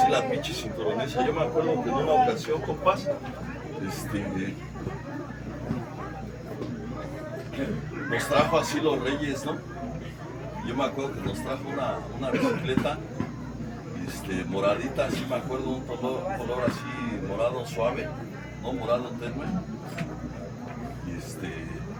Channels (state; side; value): identical; both; correlation 1.00